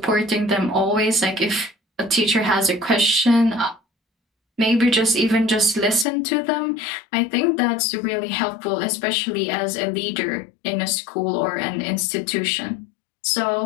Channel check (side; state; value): right; drops out; at 6.1 s